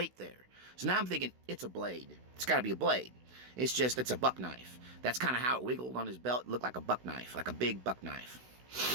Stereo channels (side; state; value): left; late; 16 ms